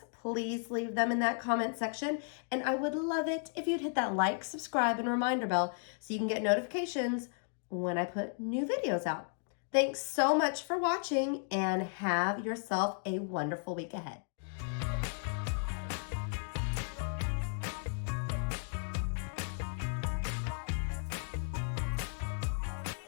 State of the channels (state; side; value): silent; right; 55 dB below the other